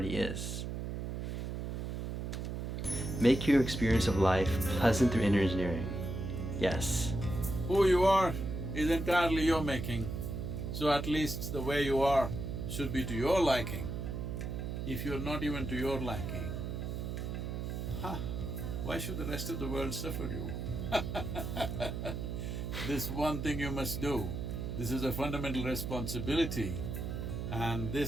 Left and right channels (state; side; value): noise; right; hum, 4 dB below the sound